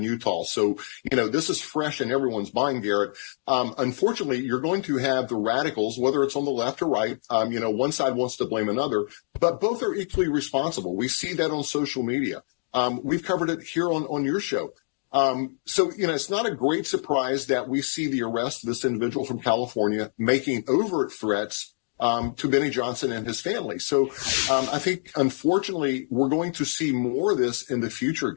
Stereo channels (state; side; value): silent; right; digital silence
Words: Utah. So, this is fresh in everyone's mind, Garrett. Unfortunately, you're going to have the radicals, whether it's on the left or right. One side wants to blame another, but both are equally responsible. We see that on social media. We've covered it here on your show. So, it's not a great surprise that we see the arrest of this individual from California making overt threats to Benny Johnson and his family. So I think, unfortunately, we're going to see more of this in the future,